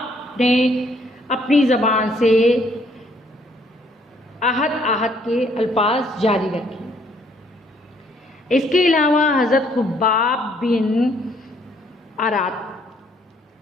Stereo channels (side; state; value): both; normal; correlation 0.65